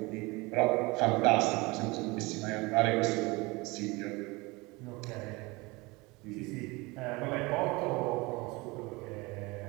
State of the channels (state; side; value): quieter; left; 24.2 dB